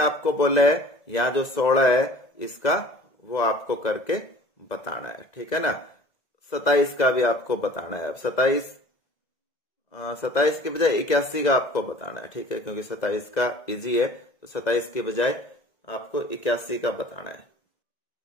बोला है यहाँ जो 16 है इसका वो आपको करके बताना है। ठीक है ना, 27 का भी आपको बताना है। अब 27 के बजाय 81 का आपको बताना है। ठीक है, क्योंकि 27 का इजी है, तो 27 के बजाय आपको 81 का बताना है।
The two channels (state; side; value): late; right; 2.0 ms